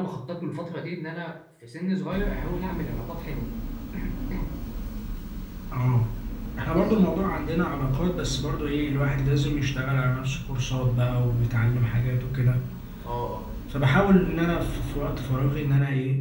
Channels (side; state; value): both; identical; correlation 1.00